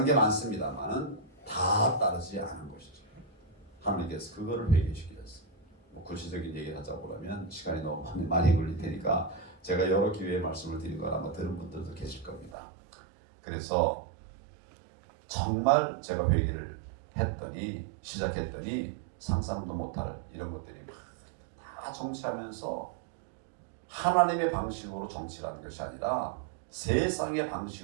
게 많습니다만은 다 따르지 않은 것이죠. 하나님께서 그거를 회개시키셨어요. 뭐 구체적인 얘기를 하자고 하면 시간이 너무 많이 걸릴 테니까 제가 여러 기회에 말씀을 드리거나 아마 들은 분들도 계실 겁니다. 그래서 정말 제가 회개를 시작했더니 상상도 못할 이런 것들이 다 정치하면서 하나님의 방식으로 정치라는 것이 아니라 세상의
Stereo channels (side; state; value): left; drops out; at 12.6 s